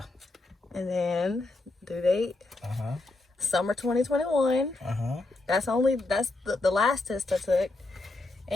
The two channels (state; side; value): quieter; right; 3.1 dB